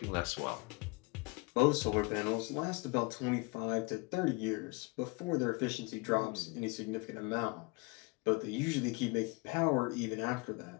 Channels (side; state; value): right; quieter; 26.9 dB